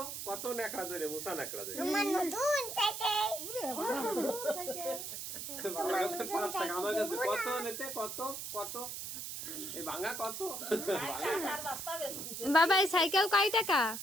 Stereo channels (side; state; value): right; noise; hiss, 6 dB below the sound